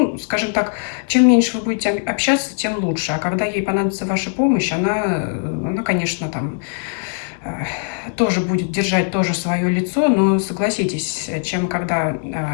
скажем так, чем меньше вы будете общаться, тем лучше. А когда ей понадобится ваша помощь, она конечно, там тоже будет держать тоже свое лицо, но согласитесь, чем когда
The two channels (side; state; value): right; silent; 66 dB below the other